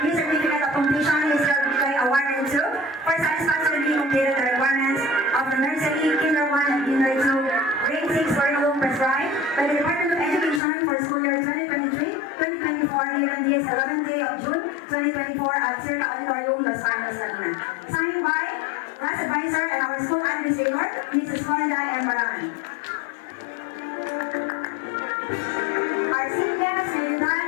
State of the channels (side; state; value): right; drops out; at 10.6 s